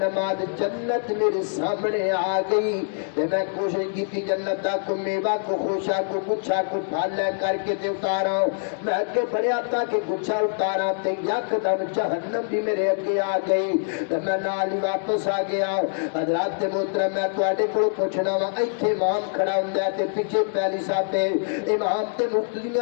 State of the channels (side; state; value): right; silent; digital silence